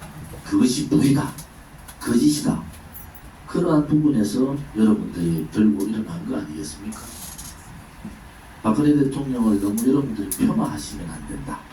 그것이 불이다, 거짓이다, 그러한 부분에서 여러분들이 들고 일어난 거 아니겠습니까? 박근혜 대통령을 너무 여러분들이 폄하하시면 안 된다.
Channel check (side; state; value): both; identical; correlation 1.00